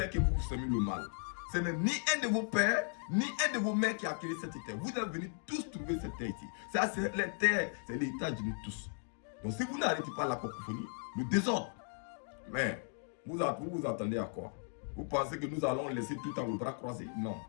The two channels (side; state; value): right; silent; 53 dB below the other